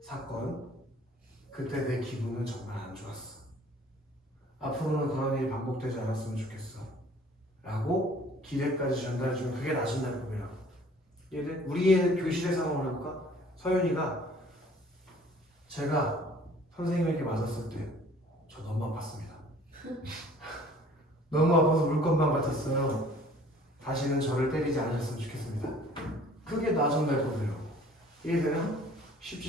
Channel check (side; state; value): both; normal; correlation 0.53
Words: 사건. 그때 내 기분은 정말 안 좋았어. 앞으로는 그런 일이 반복되지 않았으면 좋겠어. 라고 기대까지 전달해주면 그게 낮은 날법이라고. 얘들 우리의 교실의 상황을 해볼까? 서윤이가 제가 선생님에게 맞았을 때 저 너무 아팠습니다. 너무 아파서 물건만 같았어요. 다시는 저를 때리지 않으셨으면 좋겠습니다. 그게 낮은 날법이라고. 이해되나?